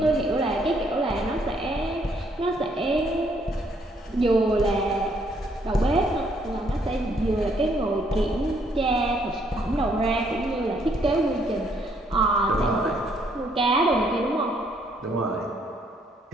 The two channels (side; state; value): both; normal; correlation 0.69